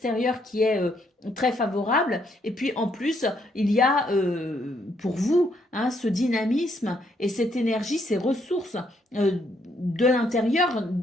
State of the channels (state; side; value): normal; both; correlation 0.72